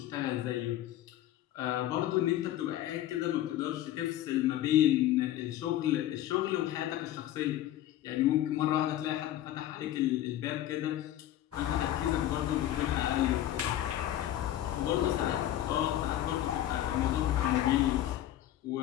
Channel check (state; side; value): quieter; right; 12.9 dB